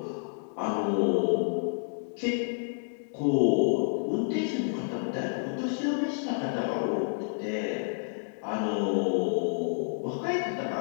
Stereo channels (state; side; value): silent; right; digital silence